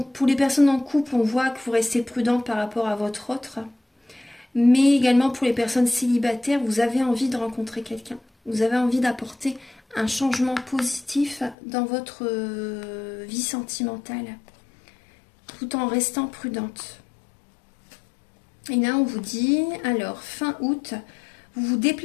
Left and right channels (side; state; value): right; drops out; at 11.6 s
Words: pour les personnes en couple, on voit que vous restez prudente par rapport à votre autre. Mais également pour les personnes célibataires, vous avez envie de rencontrer quelqu'un. Vous avez envie d'apporter un changement positif dans votre vie sentimentale, tout en restant prudente. Et là, on vous dit, alors, fin août, vous vous